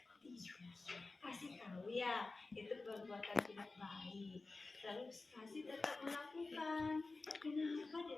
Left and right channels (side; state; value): right; quieter; 3.5 dB